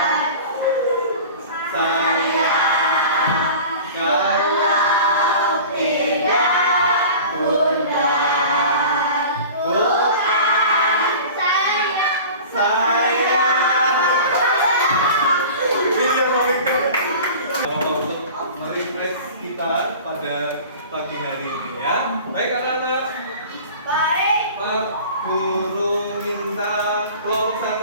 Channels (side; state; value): both; inverted; correlation -0.39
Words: Kita pada pagi hari ini ya. Baik anak-anak. Baik. Pak Guru minta kelompok